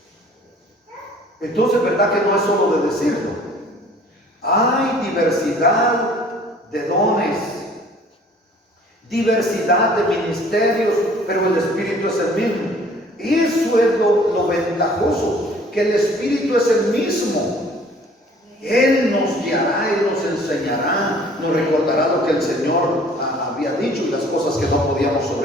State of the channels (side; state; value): both; normal; correlation 0.53